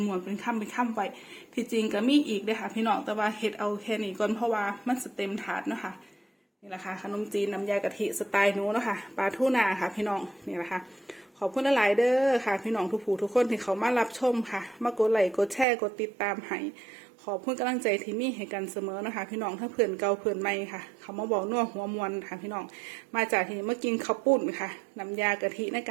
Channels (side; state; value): left; drops out; at 15.7 s